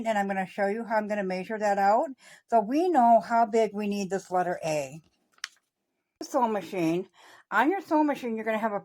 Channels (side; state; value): both; identical; correlation 1.00